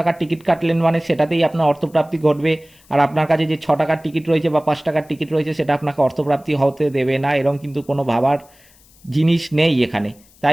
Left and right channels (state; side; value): noise; left; hiss, 29 dB below the sound